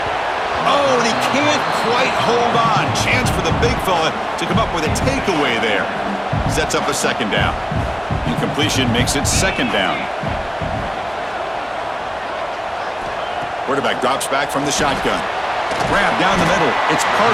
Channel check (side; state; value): both; identical; correlation 1.00